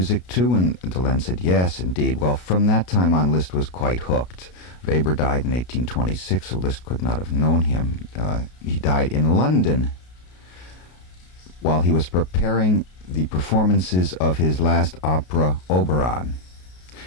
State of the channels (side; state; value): right; late; 33 ms